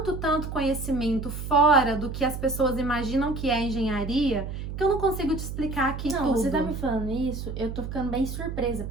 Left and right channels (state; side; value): noise; right; hum, 7 dB below the sound